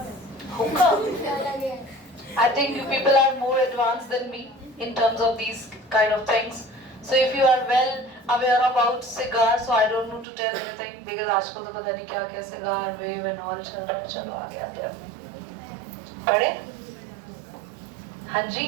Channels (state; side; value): drops out; left; at 10.2 s